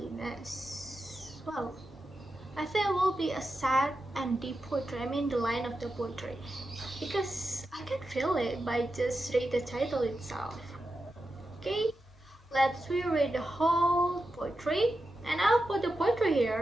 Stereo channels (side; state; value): both; normal; correlation 0.89